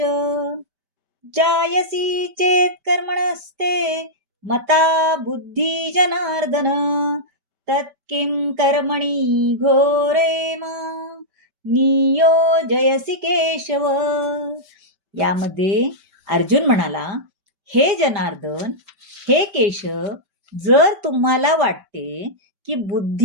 जायसी चेत कर्मणस्ते मता बुद्धी जनार्दन तत्किं कर्मणि घोरे नियोजयसी केशव. यामध्ये अर्जुन म्हणाला, हे जनार्दन, हे केशव, जर तुम्हाला वाटते की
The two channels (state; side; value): late; left; 5.1 ms